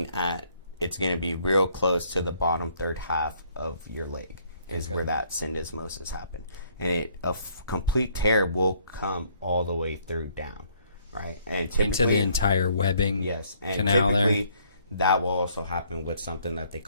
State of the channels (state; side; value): inverted; both; correlation -0.65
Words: at, it's going to be real close to the bottom third half of your leg is where that syndesmosis happened. And a complete tear will come all the way through down, right? And typically, into the entire webbing and canal typically that will also happen with something that they